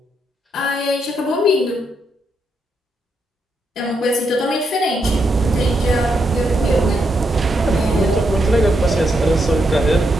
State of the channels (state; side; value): normal; both; correlation 0.80